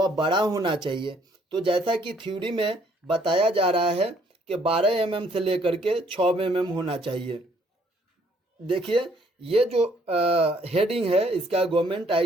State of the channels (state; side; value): normal; both; correlation 0.65